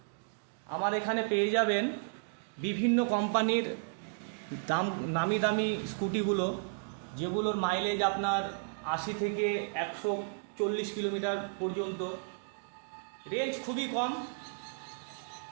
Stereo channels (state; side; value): silent; left; digital silence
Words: আমার এখানে পেয়ে যাবেন বিভিন্ন কোম্পানির নামি দামি স্কুটিগুলো, যেগুলোর মাইলেজ আপনার 80 থেকে 140 কিলোমিটার পর্যন্ত, রেঞ্জ খুবই কম।